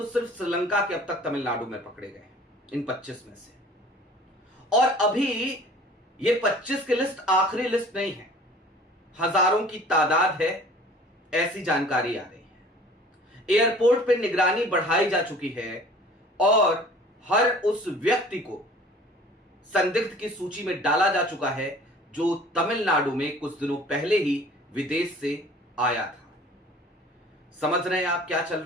सिर्फ श्रीलंका के अब तक तमिलनाडु में पकड़े गए हैं इन 25 में से। और अभी ये 25 की लिस्ट आखिरी लिस्ट नहीं है, हजारों की तादाद है, ऐसी जानकारी आ रही है। एयरपोर्ट पे निगरानी बढ़ाई जा चुकी है और हर उस व्यक्ति को संदिग्ध की सूची में डाला जा चुका है जो तमिलनाडु में कुछ दिनों पहले ही विदेश से आया था। समझ रहे हैं आप क्या चल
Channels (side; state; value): both; normal; correlation 0.49